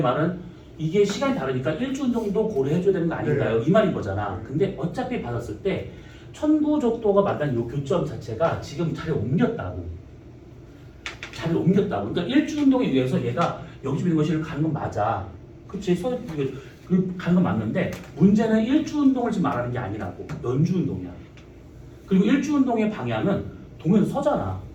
말은 이게 시간이 다르니까 일주 운동도 고려해줘야 되는 거 아닌가요? 이 말인 거잖아. 근데 어차피 받았을 때 천구적도가 만난 이 교점 자체가 지금 자리를 옮겼다고. 그러니까 일주 운동에 의해서 얘가 여기서 있는 것이 가는 건 맞아. 그치? 가는 건 맞는데 문제는 일주 운동을 지금 말하는 게 아니라고. 연주 운동이야. 그리고 일주 운동의 방향은 동에서 서잖아.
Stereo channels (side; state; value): both; identical; correlation 1.00